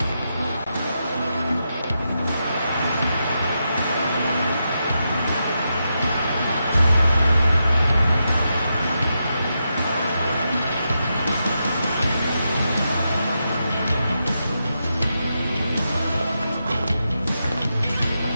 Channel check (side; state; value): both; inverted; correlation -0.86